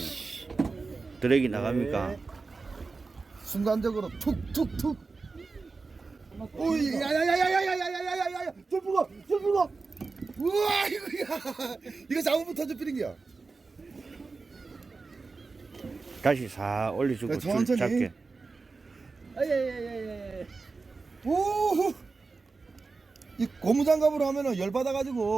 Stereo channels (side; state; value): left; quieter; 4.1 dB